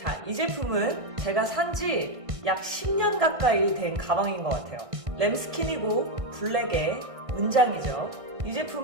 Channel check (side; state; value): left; late; 1.6 ms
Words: 이 제품은 제가 산지 약 10년 가까이 된 가방인 것 같아요. 램스킨이고 블랙의 문장이죠. 이